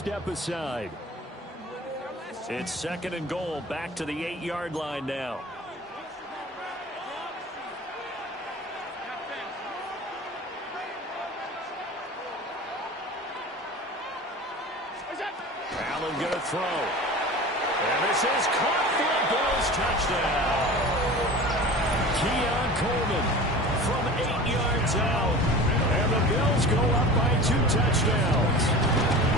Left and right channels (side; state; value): both; normal; correlation 0.36